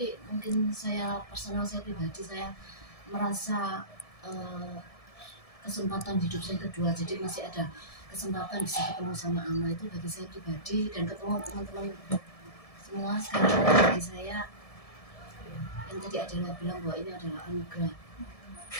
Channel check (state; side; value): late; right; 1.7 ms